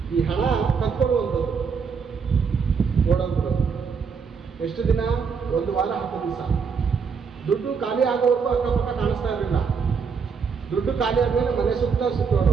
ಈ ಹಣ ಕತ್ಕೊಳ್ಳುವಂಥದ್ದು, ಓಡೋದು. ಎಷ್ಟು ದಿನ? 1 ವಾರ, 10 ದಿವಸ. ದುಡ್ಡು ಖಾಲಿ ಆಗೋವರೆಗೂ ಅಕ್ಕಪಕ್ಕ ಕಾಣಿಸ್ತಾ ಇರಲಿಲ್ಲ. ದುಡ್ಡು ಖಾಲಿ ಆದ್ಮೇಲೆ ಮನೆ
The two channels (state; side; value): quieter; left; 5.8 dB